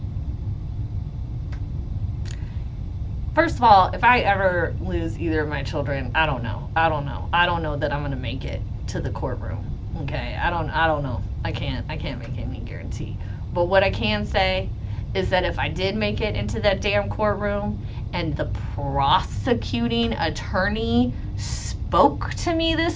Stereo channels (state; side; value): identical; both; correlation 1.00